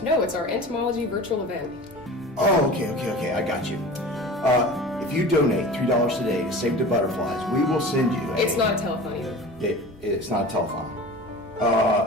No, it's our Entomology virtual event. Oh, okay, I got you. If you donate $3 today to Save the Butterflies, we will send you a... It's not a telethon either. It's not a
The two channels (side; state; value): both; normal; correlation 0.37